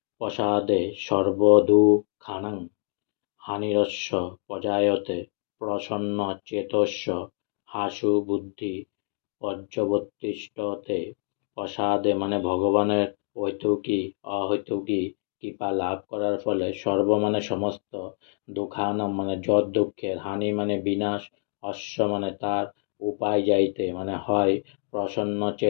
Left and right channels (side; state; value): right; silent; 61 dB below the other